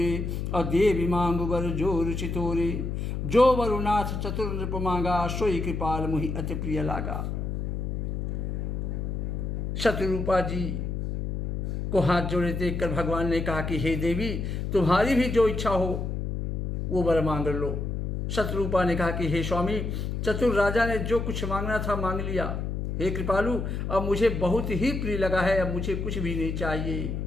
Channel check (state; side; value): noise; left; hum, 2 dB below the sound